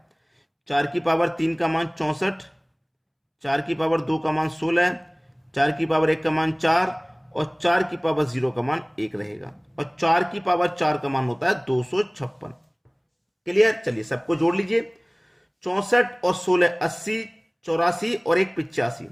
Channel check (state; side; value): identical; both; correlation 1.00